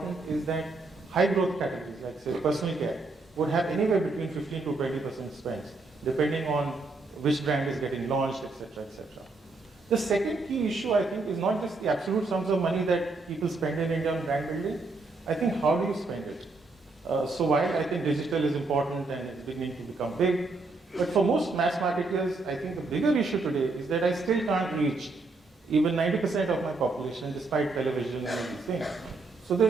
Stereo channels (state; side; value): quieter; left; 3.5 dB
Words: is that high growth categories, like say personal care, would have anywhere between 15 to 20% spends, depending on which brand is getting launched, etc., etc. The second key issue, I think, is not just the absolute sums of money that people spend in India on brand building. I think how do you spend it? So while I think digital is important and it's beginning to become big, but for most mass marketers, I think the bigger issue today is that I still can't reach even 90% of my population despite television and these things. So